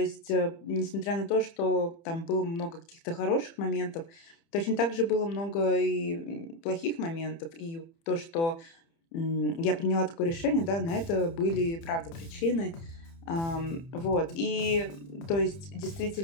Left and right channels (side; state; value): right; late; 30 ms